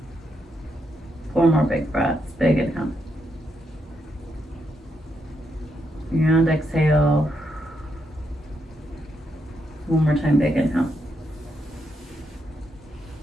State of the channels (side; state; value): both; normal; correlation 0.80